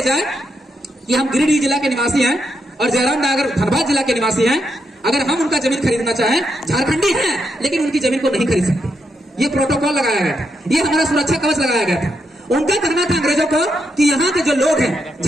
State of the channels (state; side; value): normal; both; correlation 0.81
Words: जाए कि हम गिरिडीह जिला के निवासी हैं और जयराम नगर धनबाद जिला के निवासी हैं, अगर हम उनका जमीन खरीदना चाहें, झारखंडी हैं लेकिन उनकी जमीन को नहीं खरीद सकते, ये प्रोटोकॉल लगाया गया था, ये हमारा सुरक्षा कवच लगाया गया था। उनका कहना था अंग्रेजों को कि यहाँ के जो लोग हैं,